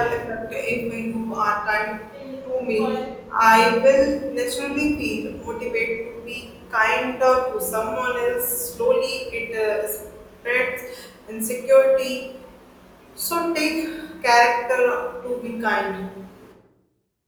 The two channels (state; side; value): identical; both; correlation 1.00